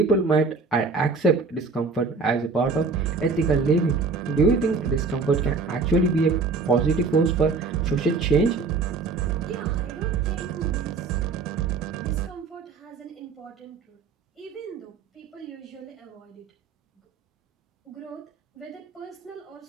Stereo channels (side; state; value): left; quieter; 4.4 dB